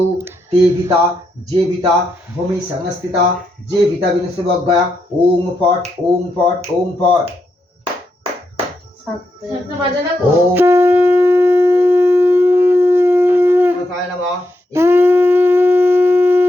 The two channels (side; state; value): both; normal; correlation 0.83